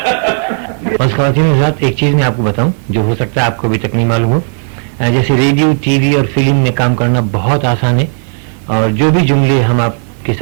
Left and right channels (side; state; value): left; silent; 57 dB below the other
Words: बस ख़वातीन हज़रात, एक चीज़ मैं आपको बताऊं जो हो सकता है आपको अभी तक नहीं मालूम हो। जैसे रेडियो, टीवी और फिल्म में काम करना बहुत आसान है, और जो भी जुमले हम आपके